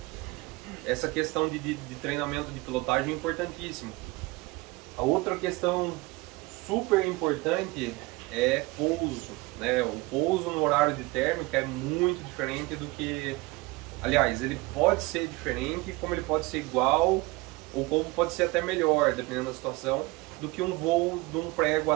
essa questão de treinamento de pilotagem é importantíssimo. A outra questão super importante é pouso, né? O pouso no horário de térmica é muito diferente do que, aliás, ele pode ser diferente, como ele pode ser igual, ou como pode ser até melhor, dependendo da situação, do que um voo de um prego à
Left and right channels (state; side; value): quieter; left; 23.0 dB